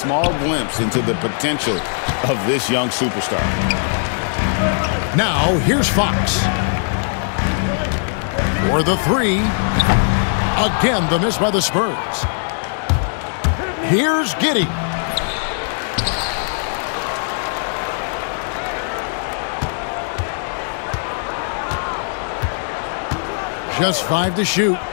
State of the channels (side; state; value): right; silent; 62 dB below the other